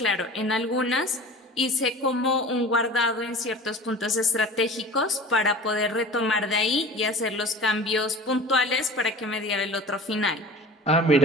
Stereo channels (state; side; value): normal; both; correlation 0.39